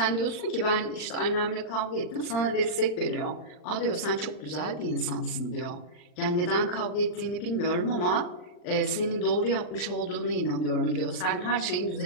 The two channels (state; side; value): late; right; 40 ms